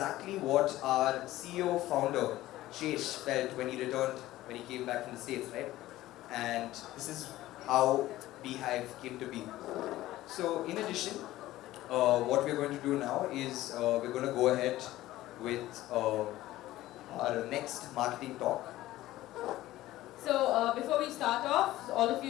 what our CEO founder, Shesh, felt when he returned, when he came back from the States, right? And this is how BHIVE came to be. So in addition, what we're going to do now is we're going to go ahead with our next marketing talk. So before we start off, all of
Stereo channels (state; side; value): quieter; right; 15.9 dB